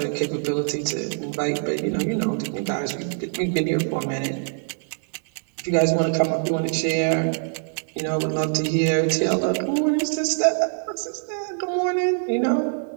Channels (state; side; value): silent; left; 58 dB below the other